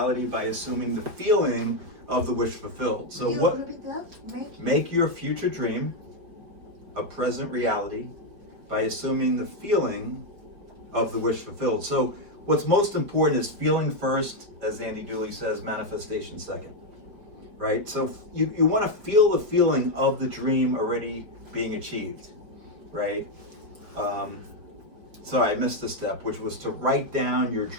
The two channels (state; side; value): late; left; 5.0 ms